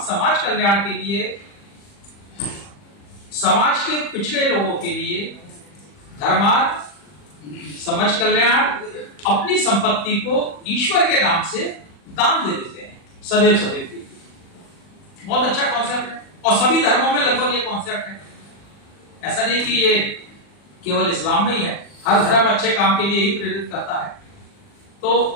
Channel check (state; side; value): late; right; 40 ms